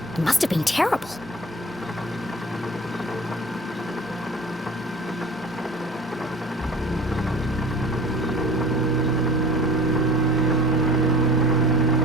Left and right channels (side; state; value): both; normal; correlation 0.42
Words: It must have been terrible.